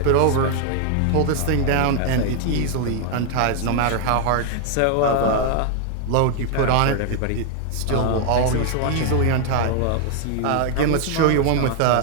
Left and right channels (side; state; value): both; different; correlation 0.00